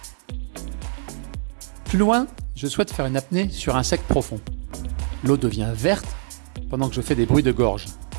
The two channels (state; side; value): silent; left; digital silence